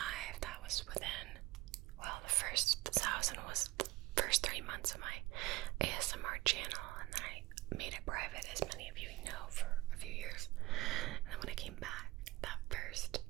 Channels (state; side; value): quieter; left; 19.3 dB